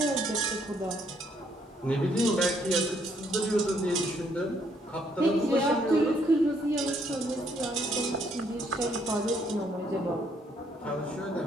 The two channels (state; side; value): normal; both; correlation 0.69